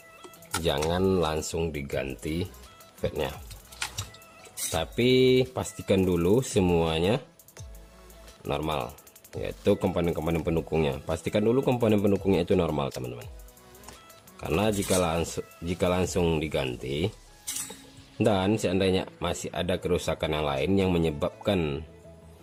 jangan langsung diganti fatnya, tapi pastikan dulu semuanya normal, yaitu komponen-komponen pendukungnya. Pastikan dulu komponen pendukungnya itu normal teman-teman, karena jika langsung diganti dan seandainya masih ada kerusakan yang lain yang menyebabkan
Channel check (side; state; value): both; identical; correlation 1.00